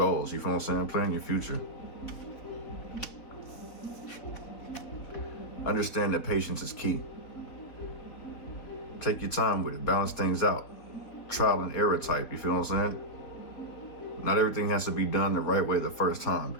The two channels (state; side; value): late; right; 4.1 ms